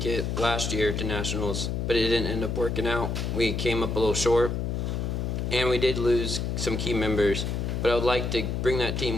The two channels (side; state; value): left; noise; hum, 1 dB below the sound